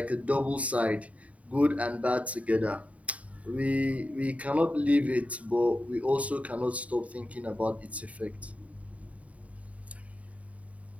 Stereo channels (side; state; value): left; late; 0.067 ms